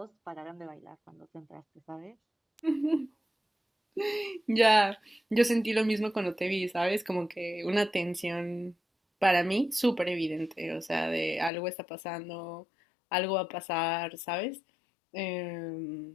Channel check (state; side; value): drops out; right; at 11.5 s